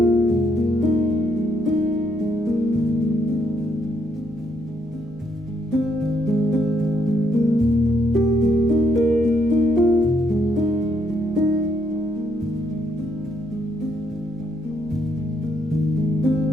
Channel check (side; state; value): both; normal; correlation 0.73